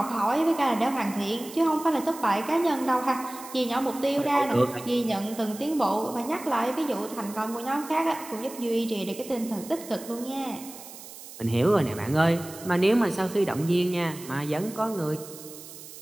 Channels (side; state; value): right; noise; hiss, 15 dB below the sound